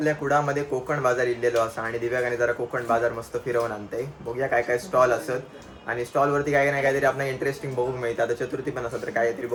कुडामध्ये कोकण बाजार इल्लेलो असा आणि दिव्यागाने जरा कोकण बाजार मस्त फिरवून आणते. बघूया काय काय स्टॉल असत आणि स्टॉलवरती काय नाही काहीतरी आपल्याला इंटरेस्टिंग बघूक मिळतं. आता चतुर्थी पण असत तर काहीतरी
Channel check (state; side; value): identical; both; correlation 1.00